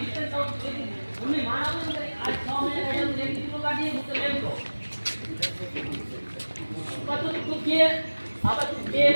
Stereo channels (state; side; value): inverted; both; correlation -1.00